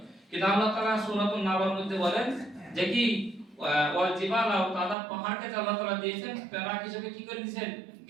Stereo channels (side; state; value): left; drops out; at 5.0 s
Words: কিন্তু আল্লাহ তাআলা সূরাতুন নাবার মধ্যে বলেন যে কি ওয়াল জিবালা আওতাদা, পাহাড়কে যে আল্লাহ তাআলা দিয়েছেন পেরেক হিসেবে কি করে দিয়েছেন,